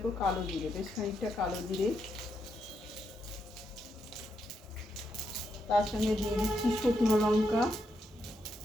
কালো জিরে, বেশ খানিকটা কালো জিরে। তার সঙ্গে দিয়ে দিচ্ছি শুকনো লঙ্কা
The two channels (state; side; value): normal; both; correlation 0.81